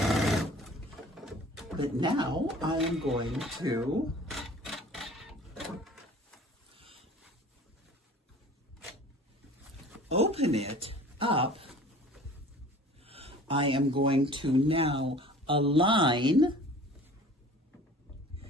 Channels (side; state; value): both; normal; correlation 0.45